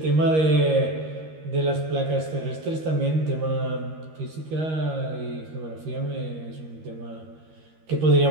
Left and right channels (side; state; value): left; late; 13 ms